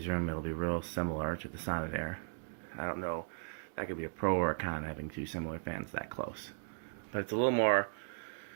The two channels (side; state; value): left; silent; digital silence